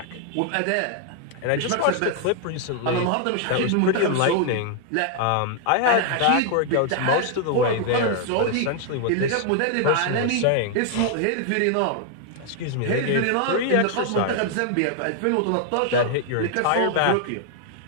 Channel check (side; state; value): both; different; correlation 0.00